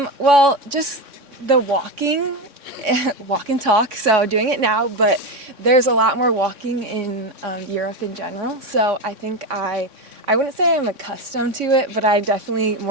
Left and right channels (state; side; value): late; left; 3.6 ms